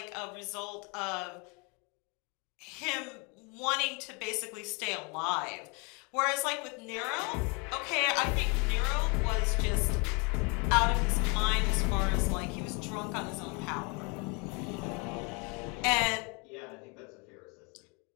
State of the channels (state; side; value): quieter; right; 31.8 dB